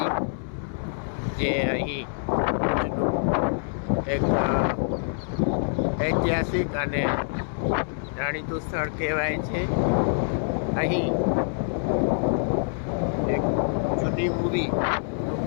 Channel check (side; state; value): right; silent; 61 dB below the other